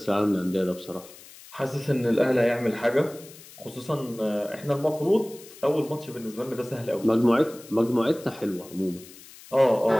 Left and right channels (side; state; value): left; noise; hiss, 20 dB below the sound